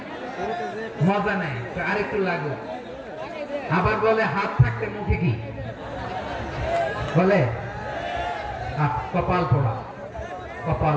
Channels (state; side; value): identical; both; correlation 1.00